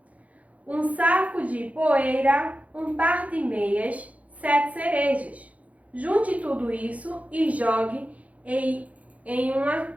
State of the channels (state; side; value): late; left; 0.068 ms